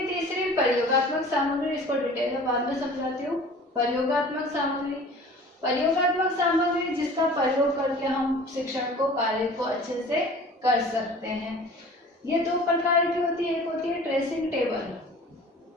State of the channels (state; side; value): normal; both; correlation 0.44